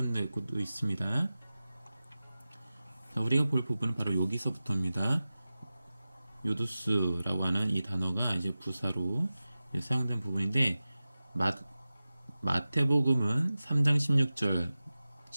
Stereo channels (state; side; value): inverted; both; correlation -0.95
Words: 것도 있습니다. 자, 우리가 볼 부분은 바로 여기서부터입니다. 요두스라고 하는 이 단어가 이제 부사로 사용된 부분인데 마태복음은 3장 16절,